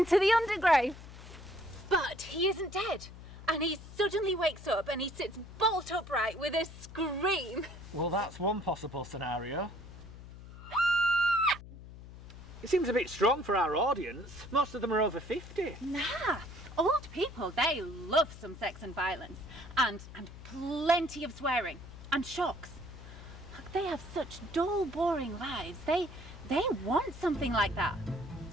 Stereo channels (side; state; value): left; noise; hum, 15 dB below the sound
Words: the undergrowth. But he isn't dead. And he suddenly wakes up and he sits bolt upright with a scream. Well, that's one possible scenario. It seems a bit strong for our audience. Most of them are over 50. Nah, old people, they love some sex and violence. And plenty of swearing. And shocks. Look, they have such dull, boring lives. They want something like that.